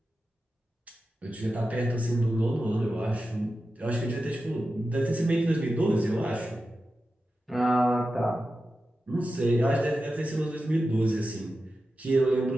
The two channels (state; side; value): normal; both; correlation 0.92